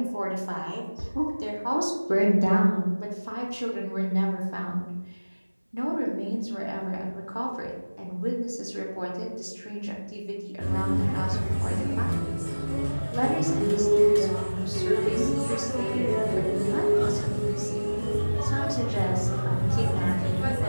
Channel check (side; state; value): both; inverted; correlation -1.00